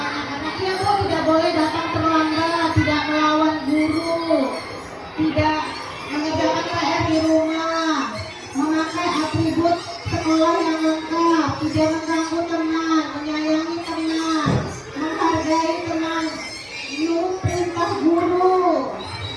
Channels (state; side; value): identical; both; correlation 1.00